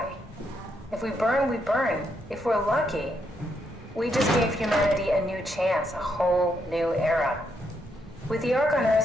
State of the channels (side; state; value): both; normal; correlation 0.78